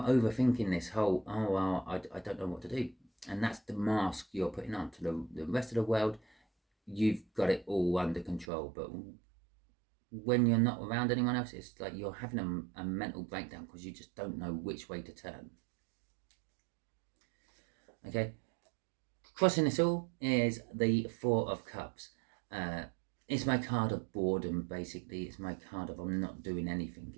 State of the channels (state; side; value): drops out; left; at 8.5 s